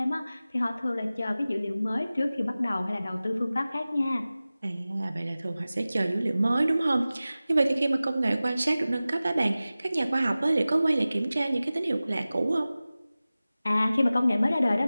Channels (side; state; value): both; inverted; correlation -0.97